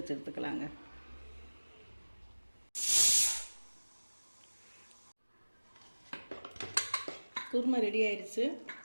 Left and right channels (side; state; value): both; inverted; correlation -1.00